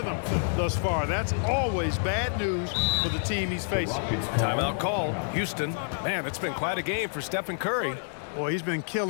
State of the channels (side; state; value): right; silent; digital silence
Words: thus far. That's always bad news for the team he's facing. Timeout call. Houston. Man, it's been quite a game for Stephen Curry. Boy, he's been